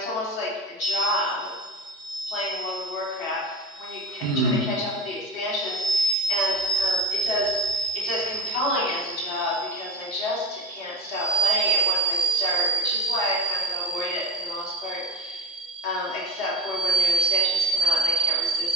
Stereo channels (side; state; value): both; normal; correlation 0.32